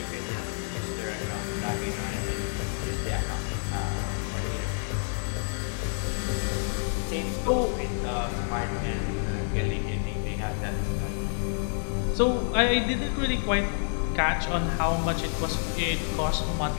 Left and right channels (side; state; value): right; silent; digital silence